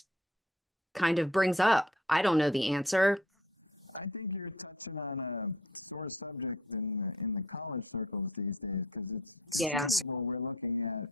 kind of brings up. I don't know the answer. I think you're touching on a sore subject in the college circles these days, because it's conceivable we're looking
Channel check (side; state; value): both; normal; correlation 0.53